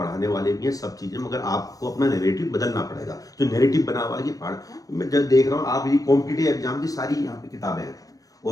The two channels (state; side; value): late; right; 0.17 ms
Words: वाले भी हैं सब चीज़ें, मगर आपको अपना नैरेटिव बदलना पड़ेगा। जो नैरेटिव बना हुआ है कि पहाड़, मैं जब देख रहा हूँ आप ये कॉम्पिटिटिव एग्जाम की सारी यहाँ पे किताबें हैं।